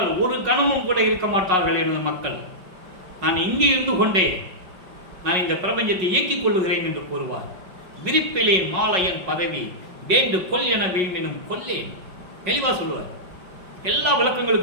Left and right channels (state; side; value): late; left; 5.4 ms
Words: ஒரு கணமும் கூட இருக்க மாட்டார்கள் எனது மக்கள். நான் இங்கே இருந்து கொண்டே நான் இந்த பிரபஞ்சத்தை இயக்கிக் கொள்ளுகிறேன் என்று கூறுவார். விரிப்பிலேன் மாலையன் பதவி வேண்டு கொல் என வீழ்மினும் கொல்லேன். தெளிவாக சொல்லுவார். எல்லா